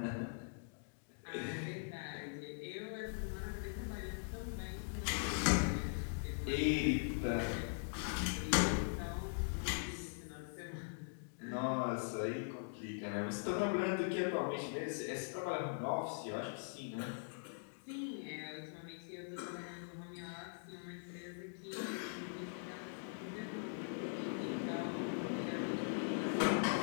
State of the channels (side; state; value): right; silent; digital silence